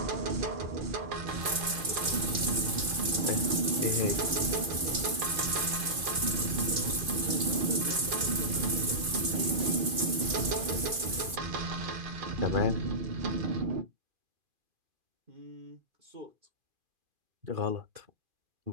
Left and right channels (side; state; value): left; late; 2.4 ms